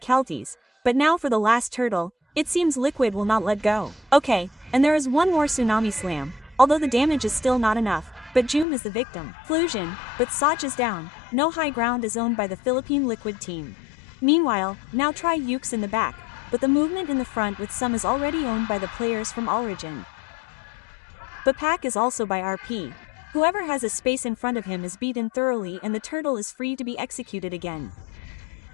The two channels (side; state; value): right; drops out; at 8.7 s